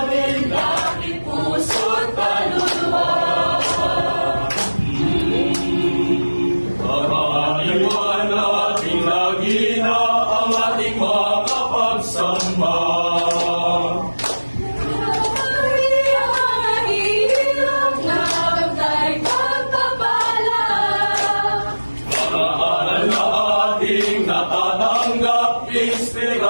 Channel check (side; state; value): both; inverted; correlation -1.00